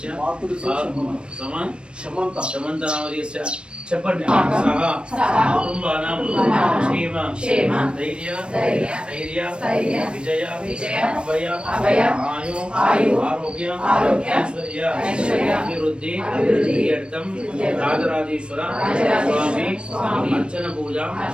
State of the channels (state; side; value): late; left; 0.057 ms